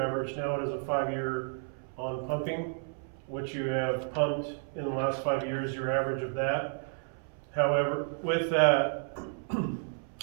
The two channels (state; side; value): silent; left; 57 dB below the other